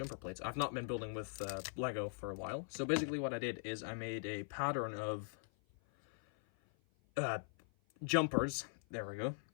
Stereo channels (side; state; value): right; silent; 50 dB below the other